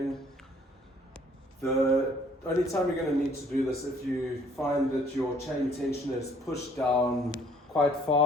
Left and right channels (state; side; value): normal; both; correlation 0.60